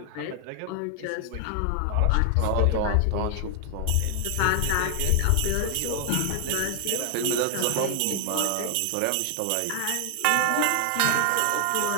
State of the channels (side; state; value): both; different; correlation 0.00